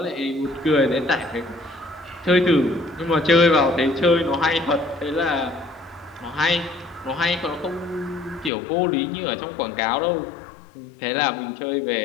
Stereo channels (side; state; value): right; drops out; at 8.5 s